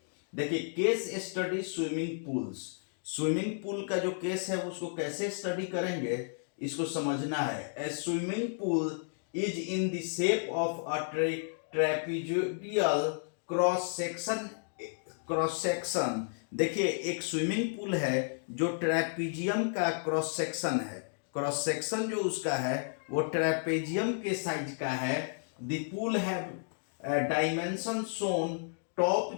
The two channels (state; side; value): silent; right; digital silence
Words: देखिए, case study swimming pools. Swimming pool का जो केस है उसको कैसे स्टडी करेंगे इसको समझना है। A swimming pool is in the shape of a trapezoidal cross section. देखिए, एक स्विमिंग पूल है जो ट्रेपीजियम का क्रॉस सेक्शन है। क्रॉस सेक्शन जो उसका है वो ट्रेपेजियम के साइज का है। द पूल है डायमेंशन शोन। टॉप